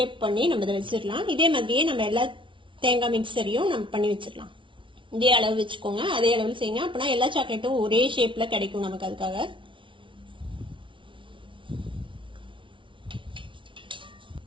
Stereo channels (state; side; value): late; left; 0.25 ms